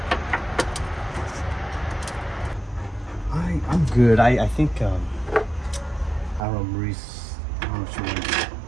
I'm good. I think I don't know, Maurice, I don't know if you want to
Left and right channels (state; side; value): drops out; left; at 6.4 s